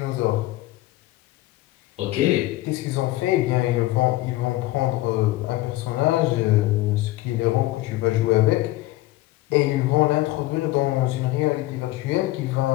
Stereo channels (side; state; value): right; quieter; 17.6 dB